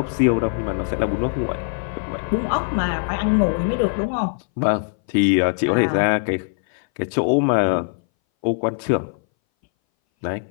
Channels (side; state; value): right; silent; 61 dB below the other